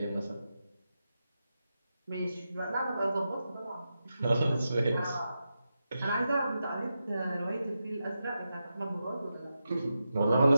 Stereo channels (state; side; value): inverted; both; correlation -0.89